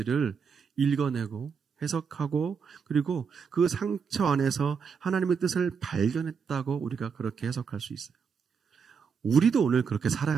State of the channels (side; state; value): left; quieter; 6.2 dB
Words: 읽어내고 해석하고 그리고 그 상처 안에서 하나님의 뜻을 발견했다고 우리가 그렇게 해석할 수 있어요. 우리도 오늘 그렇게 살아야